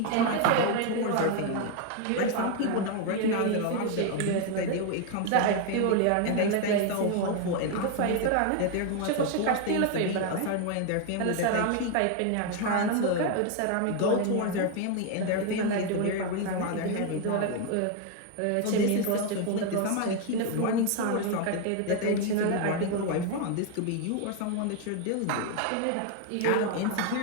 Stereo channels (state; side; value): different; both; correlation 0.01